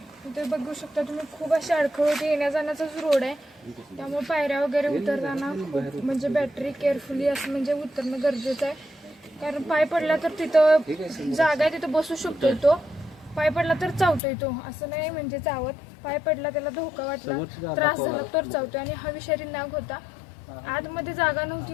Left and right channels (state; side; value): drops out; right; at 14.2 s